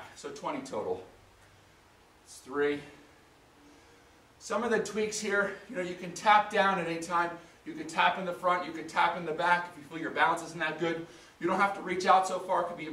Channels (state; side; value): identical; both; correlation 1.00